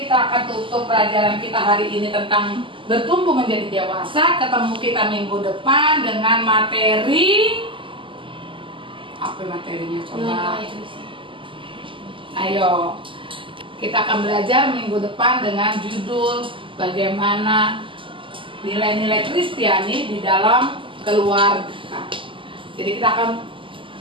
akan tutup pelajaran kita hari ini tentang bertumbuh menjadi dewasa. Ketemu kita minggu depan dengan materi apa materinya coba? Ayo, kita akan belajar minggu depan dengan judul bagaimana nilai-nilai Kristiani di dalam keluarga. Jadi kita akan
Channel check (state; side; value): late; left; 0.25 ms